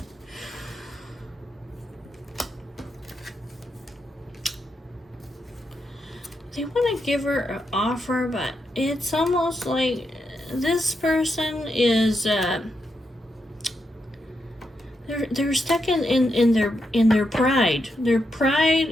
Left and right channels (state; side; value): normal; both; correlation 0.83